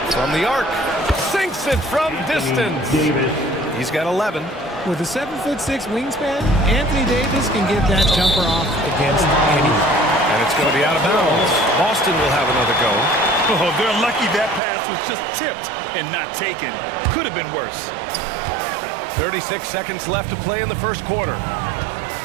From the arc. Sinks it from distance. He's got 11. With a 7'6" wingspan, Anthony Davis can get that jumper off against anyone. And it's going to be out of bounds. Boston will have another go. Oh, they're lucky that pass was just tipped and not taken. Could have been worse. 36 seconds left to play in the first quarter.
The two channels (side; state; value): left; drops out; at 14.6 s